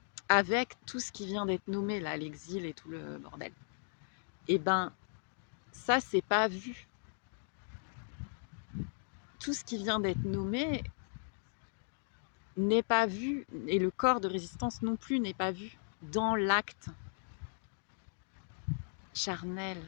Avec tout ce qui vient d'être nommé, là, l'exil et tout le bordel. Et ben, ça, c'est pas vu. Tout ce qui vient d'être nommé n'est pas vu, et le corps de résistance non plus n'est pas vu dans l'acte charnel,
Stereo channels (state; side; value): silent; right; digital silence